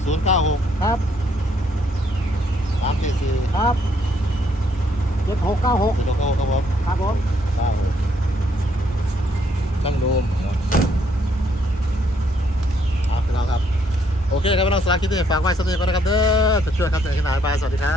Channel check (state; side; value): normal; both; correlation 0.70